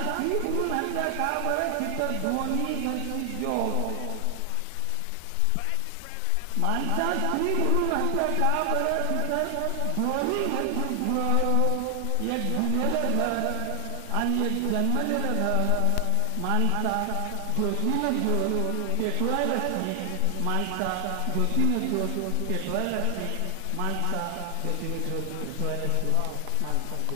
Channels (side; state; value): both; different; correlation 0.00